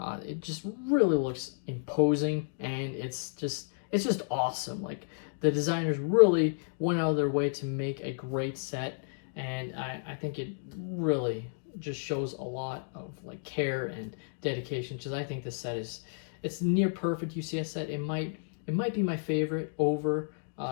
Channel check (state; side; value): silent; right; digital silence